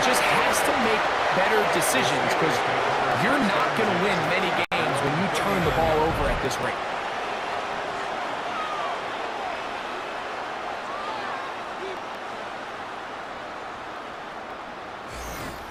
just has to make better decisions because you're not going to win many games when you turn the ball over at this rate.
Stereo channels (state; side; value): identical; both; correlation 1.00